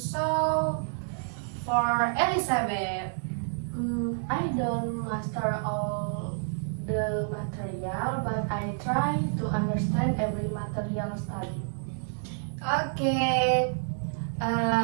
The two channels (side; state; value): left; silent; digital silence